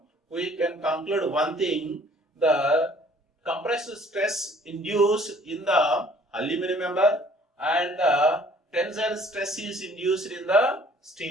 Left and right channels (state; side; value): normal; both; correlation 0.56